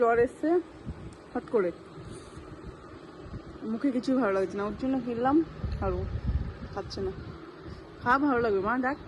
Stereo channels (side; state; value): both; identical; correlation 1.00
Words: জ্বর এসছে হট করে, মুখে কিছুই ভালো লাগছে না, ওর জন্য কিনলাম, আর ও খাচ্ছে না। খা, ভালো লাগবে মা, দেখ